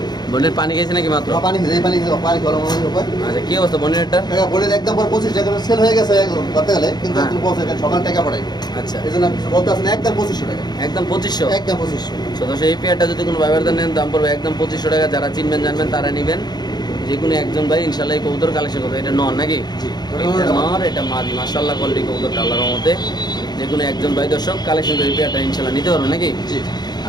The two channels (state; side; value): late; right; 0.20 ms